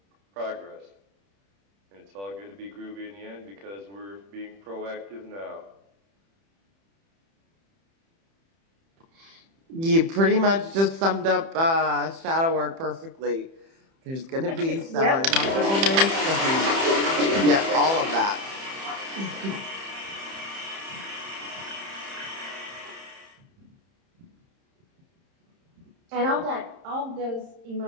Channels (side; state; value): left; late; 30 ms